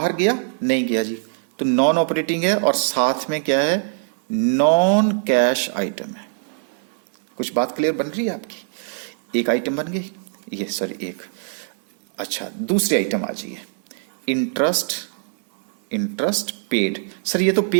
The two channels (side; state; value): left; silent; 57 dB below the other